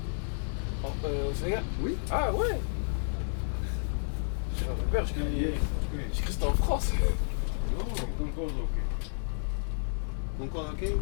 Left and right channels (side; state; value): right; silent; digital silence